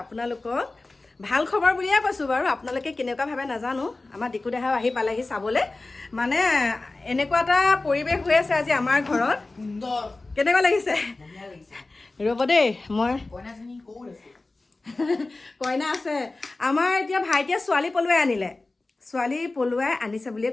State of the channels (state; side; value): quieter; right; 3.2 dB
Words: ভাল খবৰ বুলিয়ে কৈছোঁ বাৰু আপোনালোকে কেনেকুৱা ভাবে নাজানো আমাৰ ডিকু দেহাও আহি পালেহি চাবলৈ মানে এনেকুৱা এটা পৰিৱেশ হৈ আছে আজি আমাৰ ঘৰত কেনেকুৱা লাগিছে ৰ'ব দেই মই কইনা আছে আমাৰ এতিয়া ভাইটিয়ে ছোৱালী পলুৱাই আনিছে বুলিয়ে